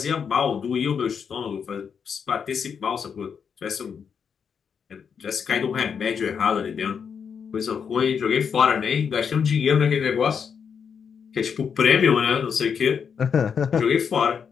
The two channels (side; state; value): right; quieter; 6.8 dB